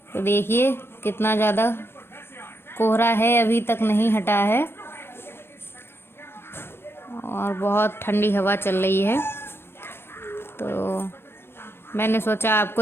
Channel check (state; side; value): late; right; 0.11 ms